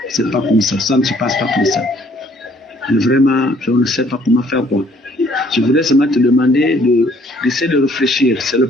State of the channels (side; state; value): both; normal; correlation 0.61